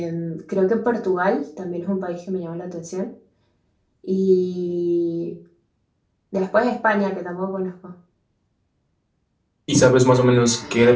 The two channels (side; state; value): both; identical; correlation 1.00